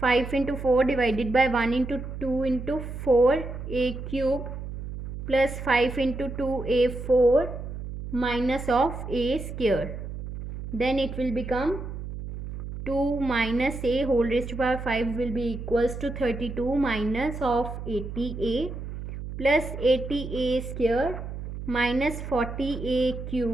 into 4 divided by 1 into 2 into 4a cube plus 5 into 2a4 minus of a square. Then it will become 2 minus a whole raised to power 5 will be equals to 32 minus of 80a plus 80a square minus 40a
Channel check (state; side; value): noise; right; hum, 8 dB below the sound